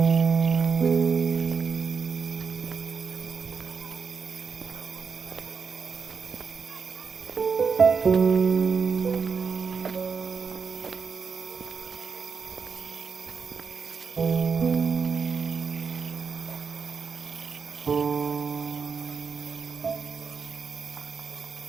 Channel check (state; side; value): quieter; left; 5.6 dB